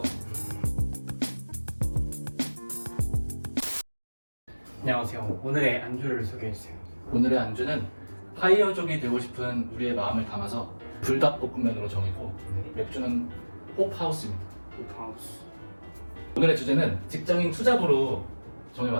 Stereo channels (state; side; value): inverted; both; correlation -1.00